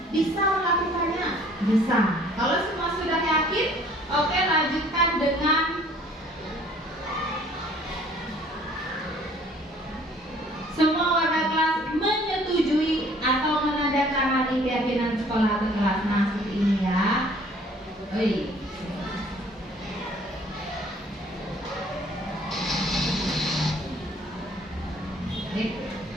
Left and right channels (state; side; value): normal; both; correlation 0.56